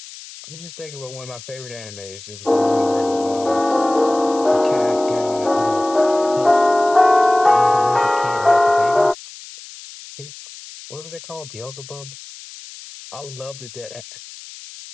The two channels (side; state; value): left; noise; hiss, 17 dB below the sound